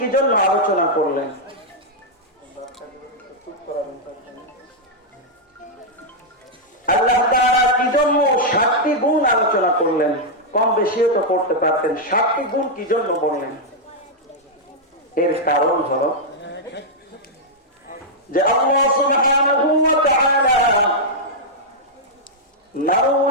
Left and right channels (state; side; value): normal; both; correlation -0.05